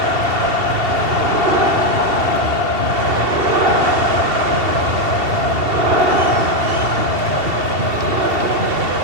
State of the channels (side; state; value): left; late; 2.7 ms